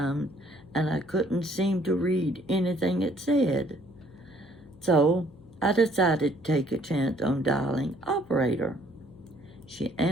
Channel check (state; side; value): noise; left; hum, 24 dB below the sound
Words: and I couldn't seem to read anything it said. So I decided to take a chance on dialing operator. She